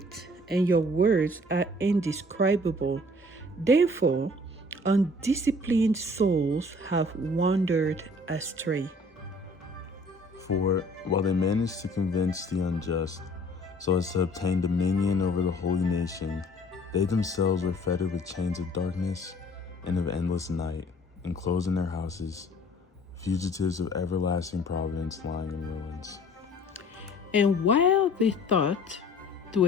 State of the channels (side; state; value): both; normal; correlation 0.53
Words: and your words are indescribable. Therefore, undisciplined souls have wandered astray. For while they managed to convince the unjust, so as to obtain dominion over the holy nation, they themselves were fettered with chains of darkness and of endless night, enclosed in their houses, fugitives of everlasting providence lying in ruins. And while they thought to